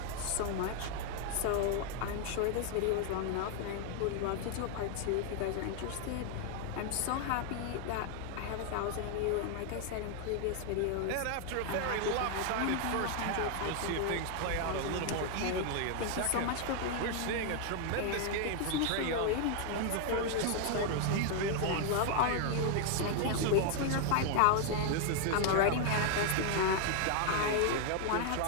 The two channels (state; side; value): different; both; correlation 0.00